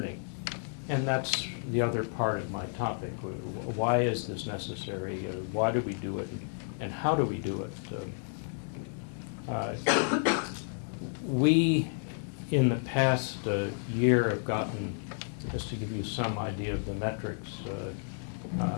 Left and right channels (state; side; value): silent; right; 57 dB below the other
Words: And that's the other part of my topic. Why is this necessary? Why do we do it? And how do we do it? We, in the past year, have gotten, just to give you some idea of the metrics,